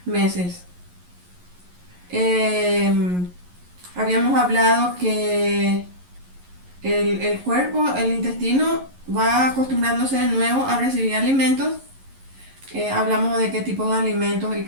meses. Eh, Habíamos hablado que el cuerpo, el intestino, va acostumbrándose de nuevo a recibir alimentos. Hablamos de qué tipo de alimentos y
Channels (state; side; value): late; left; 11 ms